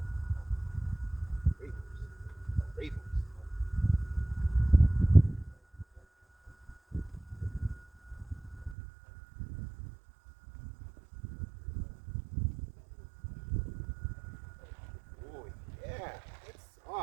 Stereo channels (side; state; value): left; drops out; at 8.8 s